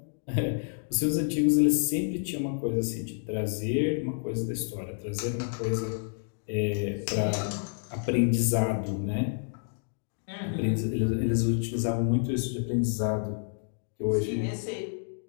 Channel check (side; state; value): right; silent; digital silence